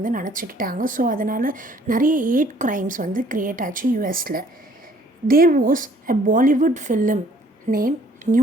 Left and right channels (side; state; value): both; normal; correlation 0.59